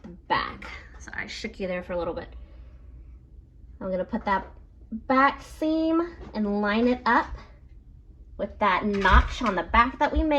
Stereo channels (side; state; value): both; identical; correlation 1.00